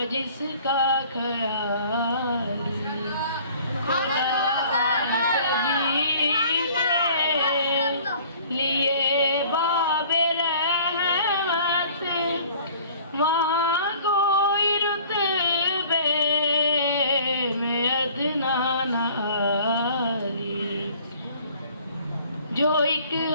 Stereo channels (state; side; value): inverted; both; correlation -0.51